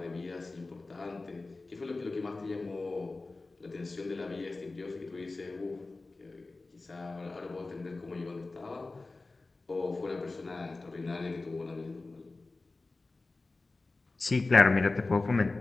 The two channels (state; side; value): quieter; right; 3.4 dB